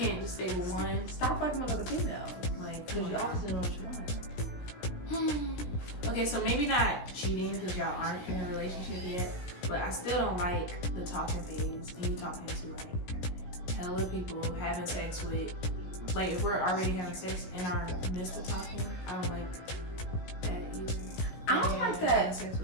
can't just stay with one. stop fucking with other females. Like, Because you obviously know what you want. Okay, so maybe not cheating because y'all aren't in a relationship yet, but I still don't like the talking phase and you talking to like hella people, having sex with, like if we're already having sex in our midst of talking, I don't like that either. I don't like that. Having sex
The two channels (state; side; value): late; right; 17 ms